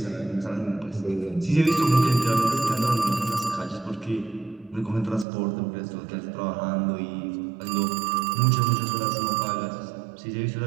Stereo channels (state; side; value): drops out; left; at 5.2 s